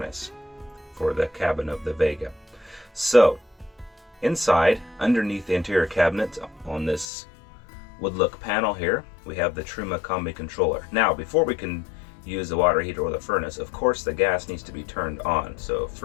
for the cabin of the Vega. So, inside, underneath the interior cabinet on this wood look panel here, we have the Truma Combi controller. Now, before we can use the water heater or the furnace, of course the gas needs to be turned on. So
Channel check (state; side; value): drops out; right; at 7.1 s